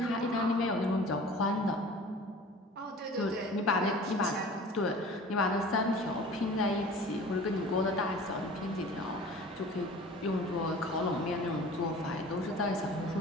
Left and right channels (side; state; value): both; normal; correlation 0.43